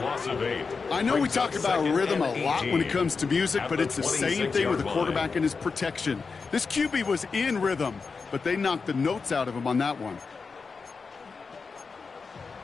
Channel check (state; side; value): quieter; right; 4.8 dB